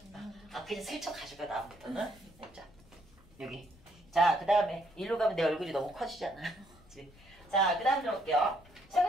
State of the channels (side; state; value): left; noise; rumble, 25 dB below the sound